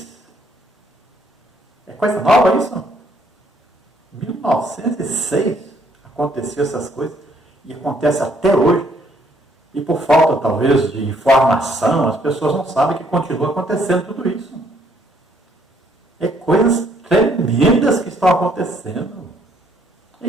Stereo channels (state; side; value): normal; both; correlation 0.67